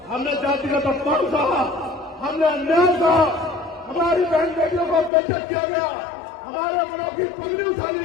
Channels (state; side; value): drops out; right; at 5.1 s